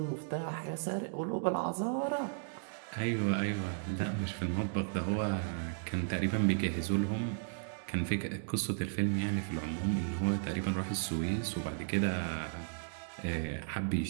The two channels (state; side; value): silent; left; digital silence